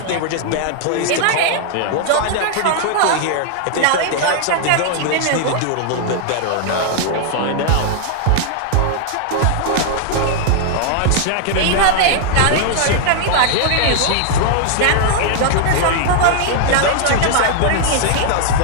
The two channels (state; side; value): different; both; correlation 0.00